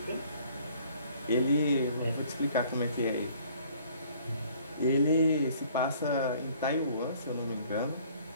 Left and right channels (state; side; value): inverted; both; correlation -0.57